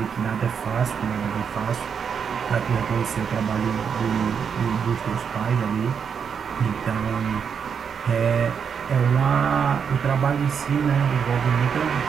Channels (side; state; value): left; quieter; 6.9 dB